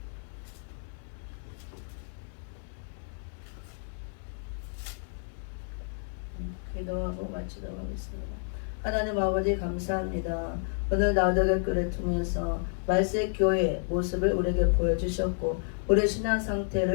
기도하고 마치도록 하겠습니다. 하나님 아버지 감사합니다. 오늘 나우덕의 글을 통해서 말세 교회의 모습을 우리에게 보여주셨고 우리 신앙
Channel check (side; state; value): right; silent; 58 dB below the other